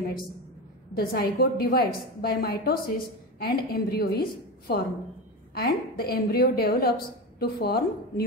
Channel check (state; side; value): normal; both; correlation 0.21